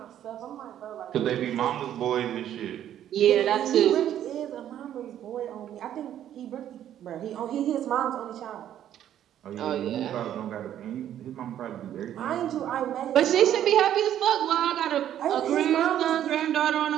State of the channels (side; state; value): left; quieter; 11.0 dB